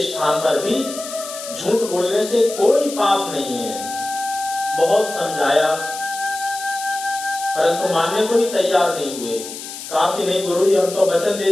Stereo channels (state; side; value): noise; left; hiss, 10 dB below the sound